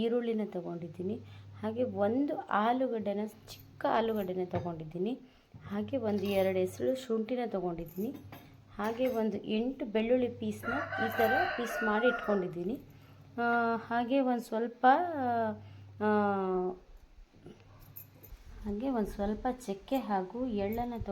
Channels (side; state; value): both; identical; correlation 1.00